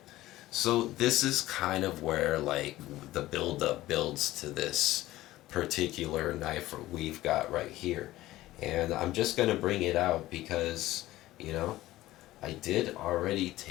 So this is kind of where like the build up builds to this particular knife we've got right here. And I'm just going to bring it out because, you know, I did already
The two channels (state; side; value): quieter; right; 16.3 dB